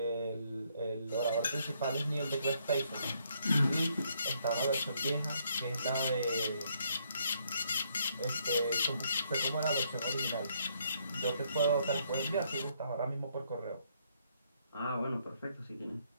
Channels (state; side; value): inverted; both; correlation -0.71